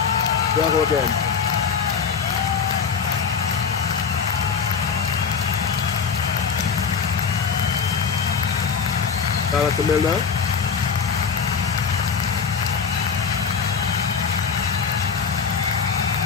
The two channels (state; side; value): quieter; right; 6.1 dB